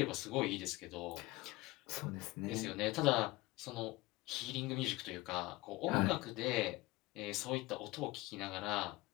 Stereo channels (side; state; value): right; quieter; 20.4 dB